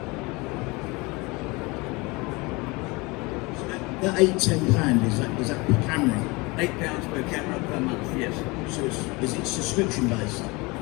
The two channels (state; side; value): quieter; right; 25.2 dB